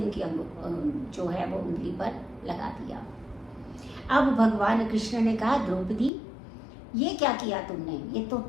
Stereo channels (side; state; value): right; drops out; at 6.1 s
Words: जो है वो उंगली पर लगा दिया। अब भगवान कृष्ण ने कहा, द्रौपदी ये क्या किया तुमने, ये तो